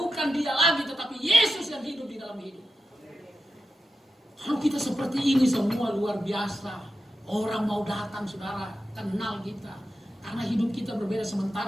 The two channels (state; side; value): normal; both; correlation 0.90